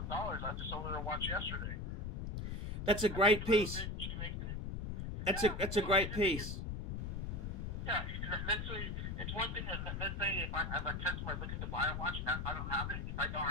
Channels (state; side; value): noise; left; rumble, 4 dB below the sound